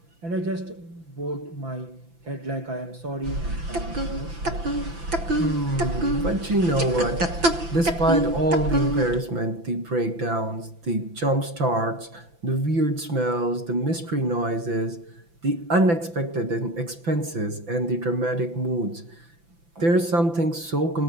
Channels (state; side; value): late; left; 5.9 ms